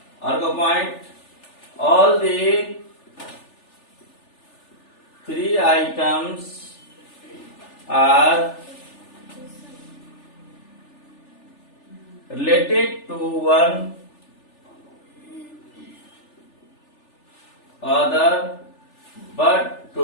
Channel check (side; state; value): right; late; 3.4 ms